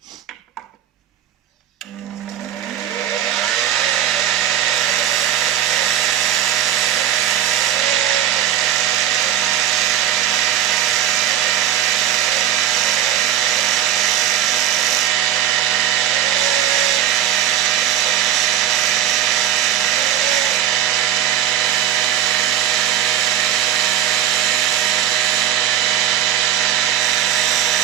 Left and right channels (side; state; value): left; quieter; 11.1 dB